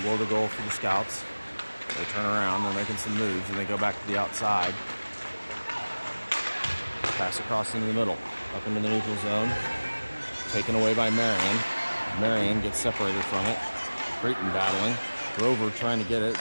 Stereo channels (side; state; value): both; inverted; correlation -1.00